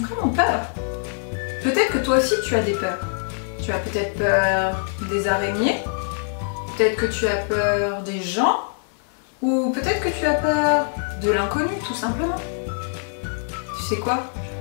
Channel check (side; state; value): right; silent; 56 dB below the other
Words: peur. Peut-être que toi aussi tu as des peurs. Tu as peut-être peur des araignées, peut-être que tu as peur des gens, ou peut-être que tu as peur de l'inconnu, tout simplement. Tu sais quoi?